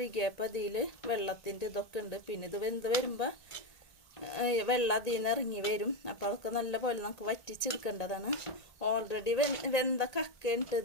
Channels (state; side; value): late; right; 1.9 ms